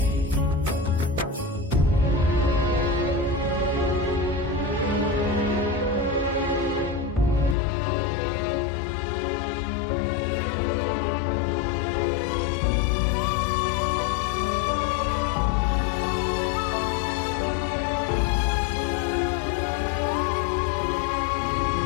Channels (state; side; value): drops out; right; at 7.6 s